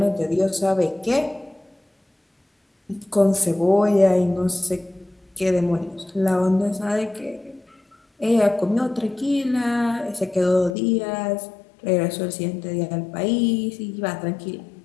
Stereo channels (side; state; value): right; drops out; at 10.8 s